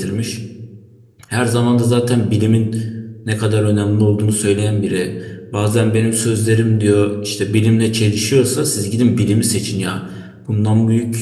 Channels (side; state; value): both; identical; correlation 1.00